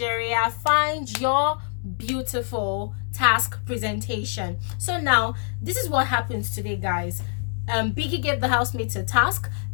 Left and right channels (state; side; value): silent; right; digital silence